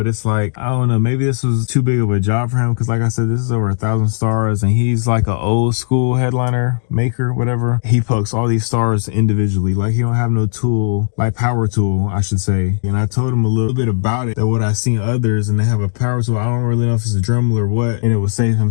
it's like, I don't know, maybe this was too big of a job for him, because like I said, this is over 1,000 stars, and he's like an old school headliner maker, whatever. He pokes all these stars individually. Like he don't have no tool, like power tool, I should say. And I told him a little bit about it, that what I've seen others, and they have a power tool. I don't really know if it's a Dremel or what, and it would save him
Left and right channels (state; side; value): silent; right; digital silence